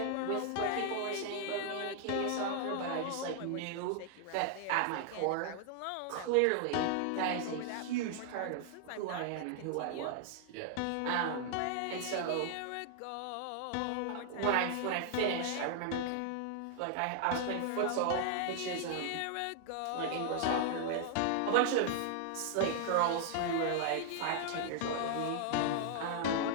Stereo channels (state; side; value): different; both; correlation 0.00